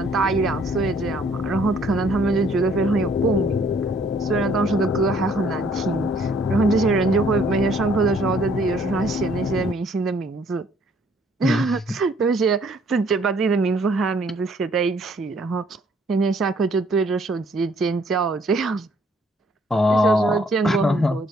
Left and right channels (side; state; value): both; normal; correlation 0.62